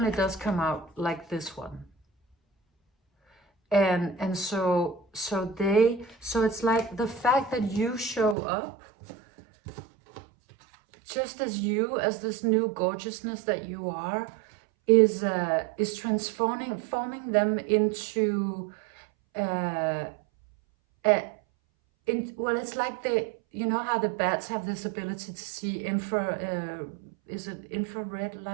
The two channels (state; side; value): drops out; left; at 8.3 s